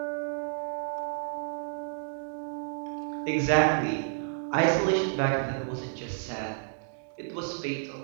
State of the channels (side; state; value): left; silent; digital silence